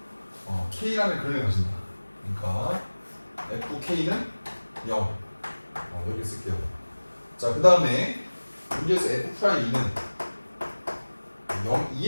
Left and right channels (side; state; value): both; inverted; correlation -1.00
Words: K라는 근을 가진다. 그러니까 FK는 0 이렇게 쓸게요. 자, 그 다음에 문제에서 F'E는 0,